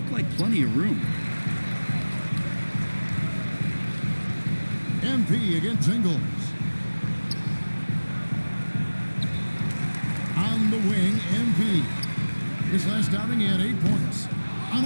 like plenty of room. MP against Ingles. On the wing, MP. His last outing, he had 8 points.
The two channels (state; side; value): inverted; both; correlation -1.00